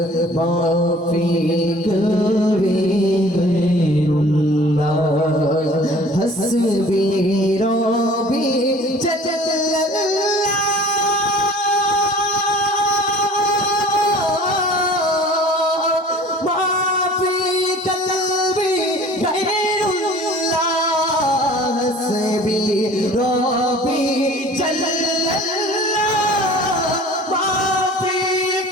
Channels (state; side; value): normal; both; correlation 0.47